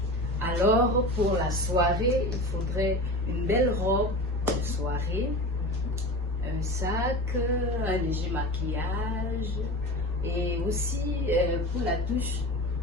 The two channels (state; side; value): normal; both; correlation 0.31